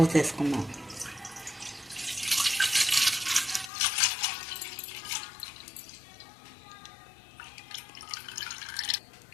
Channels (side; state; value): right; drops out; at 3.7 s